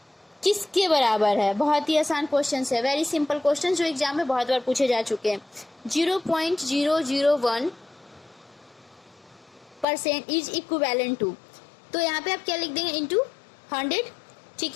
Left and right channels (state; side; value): drops out; right; at 9.9 s